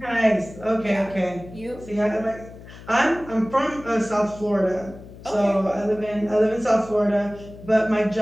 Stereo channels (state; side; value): noise; left; hum, 17 dB below the sound